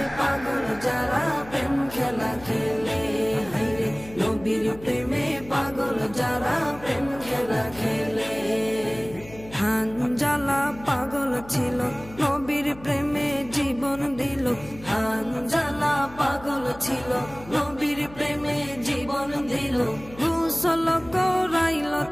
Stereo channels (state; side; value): noise; left; hum, 18 dB below the sound